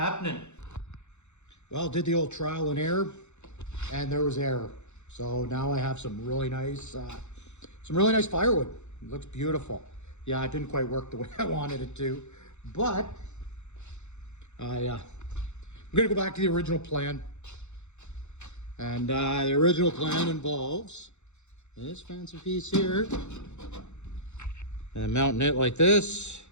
Well, did the old trial and error, and there was error. So now I have some really nice firewood. It looks beautiful. Yeah, it didn't quite work the way I wanted it to, but I I'm gonna go back to the original plan. And the original plan involves this fancy piece here. And then mounting it like this.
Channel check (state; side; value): late; right; 0.83 ms